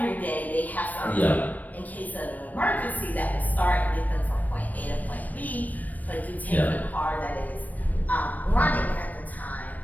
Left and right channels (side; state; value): right; late; 0.080 ms